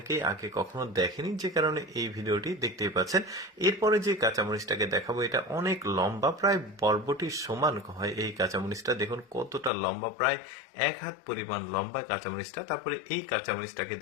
আগে কখনো দেখেনি, যে কারণে এই ভিডিওটি দেখতেই পাচ্ছেন। এরপরে যে কাঁচামরিচটাকে দেখাবো, এটা অনেক লম্বা, প্রায় বরবটির সমান হয় এই কাঁচামরিচটা। দেখুন কতটা লম্বা, প্রায় 1 হাত পরিমাণ লম্বা কাঁচামরিচটা। তারপরে এই কাঁচামরিচটাকে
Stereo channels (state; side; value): drops out; right; at 9.7 s